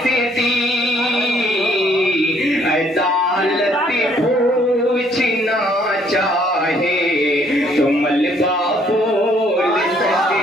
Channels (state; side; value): normal; both; correlation 0.64